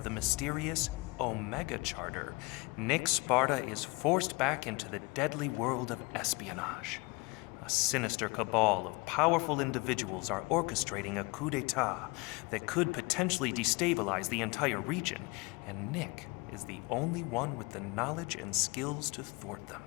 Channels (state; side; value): quieter; right; 26.5 dB